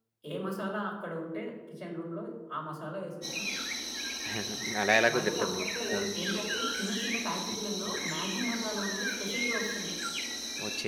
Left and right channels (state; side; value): identical; both; correlation 1.00